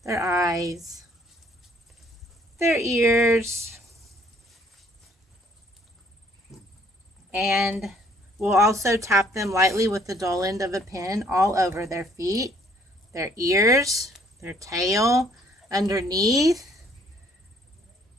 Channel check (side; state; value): both; normal; correlation 0.62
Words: their eyes, their ears. And we'll also tap them lightly with the dull end of a pin all over their feet, their ears, their tail, underneath,